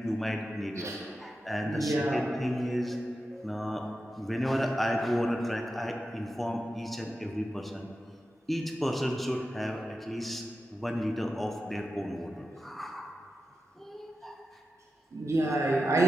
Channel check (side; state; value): both; normal; correlation 0.91